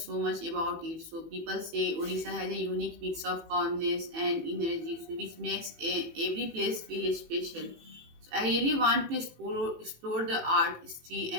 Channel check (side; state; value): left; late; 18 ms